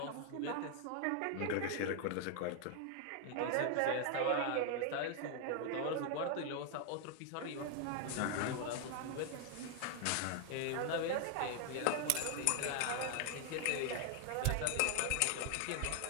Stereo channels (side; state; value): both; different; correlation 0.00